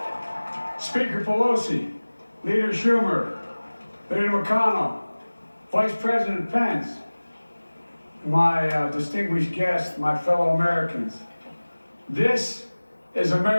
Speaker Pelosi, Leader Schumer, Leader McConnell, Vice President Pence, my distinguished guests, my fellow Americans. This is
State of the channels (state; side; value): inverted; both; correlation -1.00